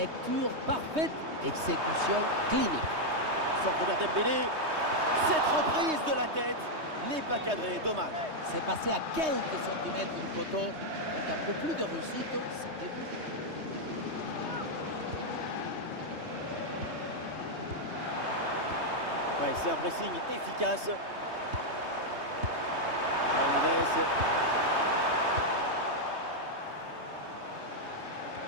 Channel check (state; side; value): late; left; 3.2 ms